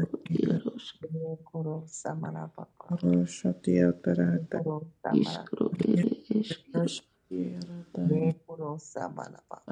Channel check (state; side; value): identical; both; correlation 1.00